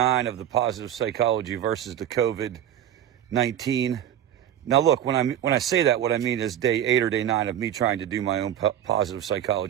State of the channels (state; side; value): quieter; left; 10.6 dB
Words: of the positive psychology versus the COVID-19. Now, look, when I say that, what I mean is day 8 or day 9 of me trying to do my own positive